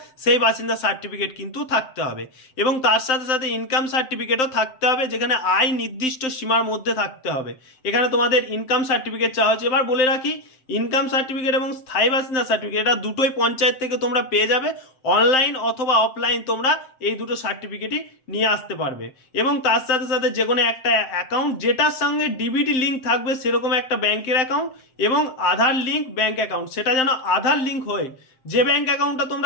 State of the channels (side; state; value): right; late; 7.7 ms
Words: সেই বাসিন্দা সার্টিফিকেট কিন্তু থাকতে হবে। এবং তার সাথে সাথে ইনকাম সার্টিফিকেটও থাকতে হবে, যেখানে আয় নির্দিষ্ট সীমার মধ্যে থাকতে হবে। এখানে তোমাদের ইনকাম সার্টিফিকেট চাওয়া হচ্ছে। এবার বলে রাখি, ইনকাম সার্টিফিকেট এবং স্থায়ী বাসিন্দা সার্টিফিকেট এটা দুটোই পঞ্চায়েত থেকে তোমরা পেয়ে যাবে। অনলাইন অথবা অফলাইন তোমরা এই দুটো সার্টিফিকেটই নিয়ে আসতে পারবে। এবং তার সাথে সাথে যে কোনো একটা অ্যাকাউন্ট যেটার সঙ্গে ডিবিটি লিঙ্ক থাকবে, সেরকম একটা ব্যাংকের অ্যাকাউন্ট এবং আধার লিঙ্ক ব্যাংক অ্যাকাউন্ট, সেটা যেন আধার লিঙ্ক হয়। যে ব্যাংক অ্যাকাউন্টটা